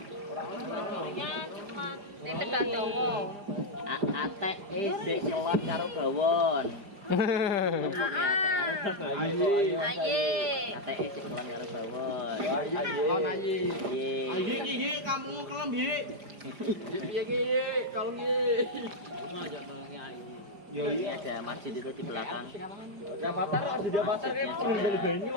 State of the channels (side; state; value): left; late; 5.0 ms